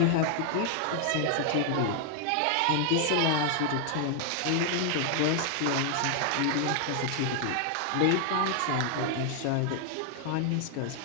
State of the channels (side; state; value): both; different; correlation 0.00